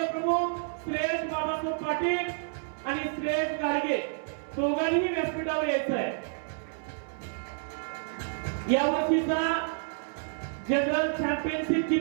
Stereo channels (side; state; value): left; silent; 58 dB below the other